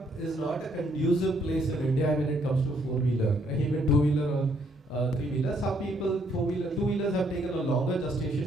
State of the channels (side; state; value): both; normal; correlation 0.69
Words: is not a conducive place in India when it comes to four-wheeler, even two-wheeler or three-wheeler. Some people four-wheeler, two-wheelers have taken a longer